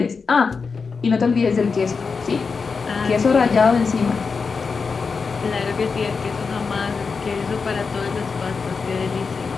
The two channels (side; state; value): right; quieter; 5.0 dB